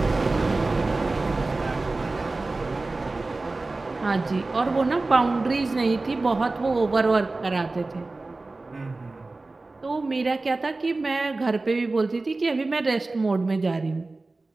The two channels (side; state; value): left; quieter; 3.3 dB